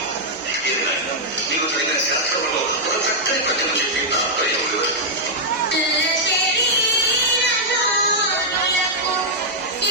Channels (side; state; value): both; normal; correlation -0.05